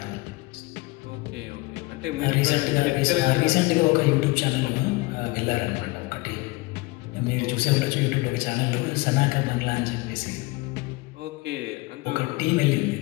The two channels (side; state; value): right; quieter; 22.7 dB